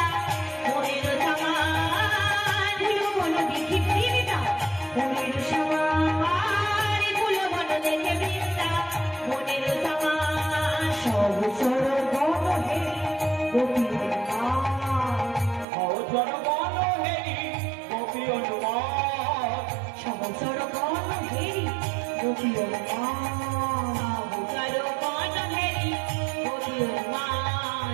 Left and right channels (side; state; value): left; drops out; at 15.7 s